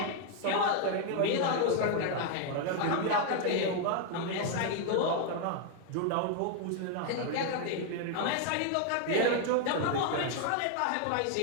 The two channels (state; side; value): different; both; correlation 0.00